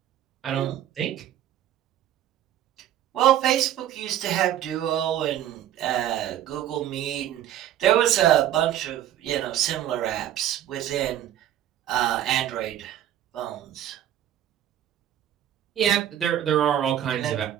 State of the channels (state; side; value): quieter; left; 11.5 dB